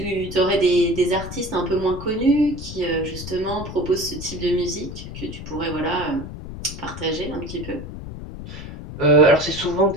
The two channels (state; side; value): noise; left; rumble, 10 dB below the sound